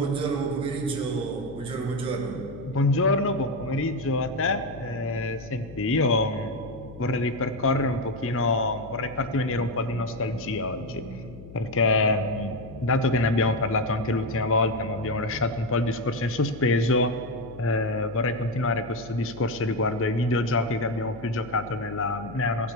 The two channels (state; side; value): noise; left; hum, 16 dB below the sound